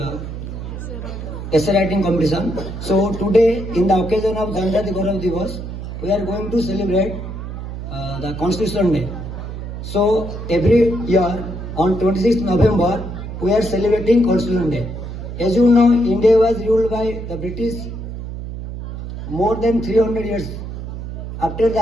essay writing competition. So today, in the occasion of Janjati Gaurav Divas, we are going to celebrate the Constitution Day. So every year on 26th November, we are celebrating Constitution Day. As you know, India was ruled by the British more than 300 years. After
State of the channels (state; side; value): noise; right; hum, 8 dB below the sound